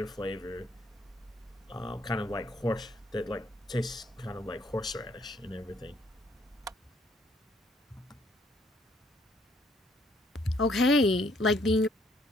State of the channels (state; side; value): normal; both; correlation 0.67